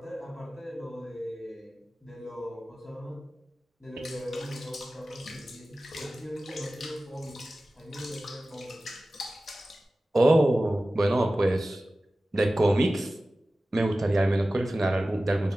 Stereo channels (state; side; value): normal; both; correlation 0.96